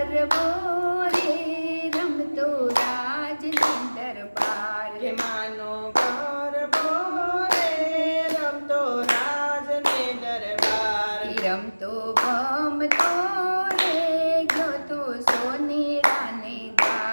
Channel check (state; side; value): inverted; both; correlation -1.00